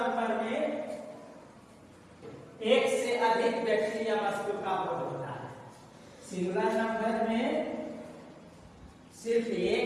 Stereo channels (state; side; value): identical; both; correlation 1.00